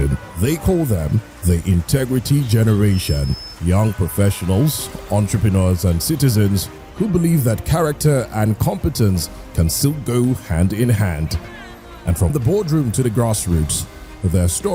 They call them the Integrity Generation. Young professionals, entrepreneurs, and citizens who believe that character and competence can still go hand in hand. And from the boardroom to the grassroots, their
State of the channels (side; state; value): both; identical; correlation 1.00